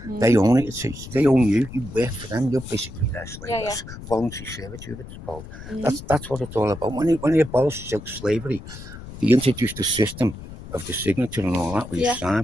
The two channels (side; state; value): left; noise; rumble, 13 dB below the sound